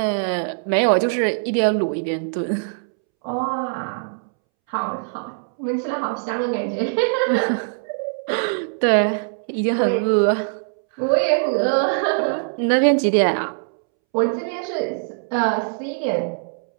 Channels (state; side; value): silent; left; 64 dB below the other